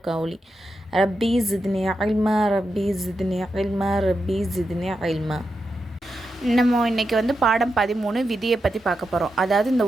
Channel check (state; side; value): normal; both; correlation 0.87